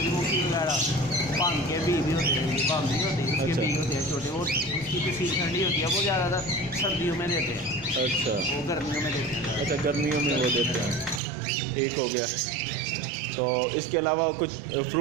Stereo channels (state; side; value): drops out; left; at 11.2 s